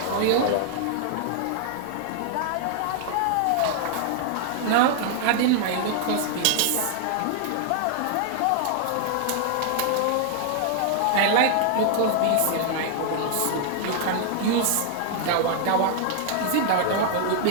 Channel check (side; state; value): both; different; correlation 0.00